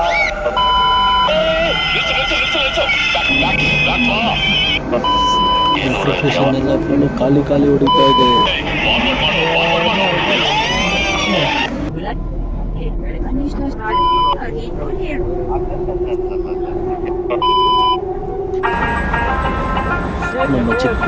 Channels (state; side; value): identical; both; correlation 1.00